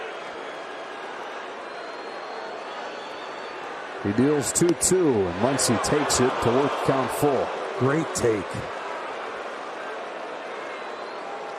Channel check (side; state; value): both; identical; correlation 1.00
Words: He deals 2-2, and Muncy takes it to work count full. Great take.